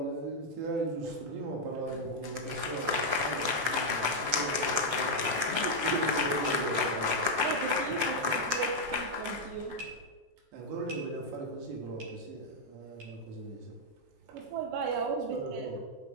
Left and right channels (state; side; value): late; left; 14 ms